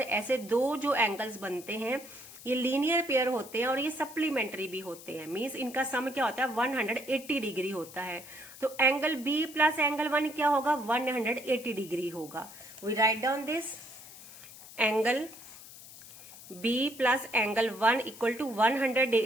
ऐसे दो जो एंगल्स बनते हैं ये लीनियर पेयर होते हैं और ये सप्लीमेंट्री भी होते हैं। मींस इनका सम क्या होता है, 180 डिग्री होता है। तो एंगल बी प्लस एंगल 1 क्या होगा, 180 डिग्री होगा। We write down this, angle B plus angle 1 equal to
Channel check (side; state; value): left; noise; hiss, 17 dB below the sound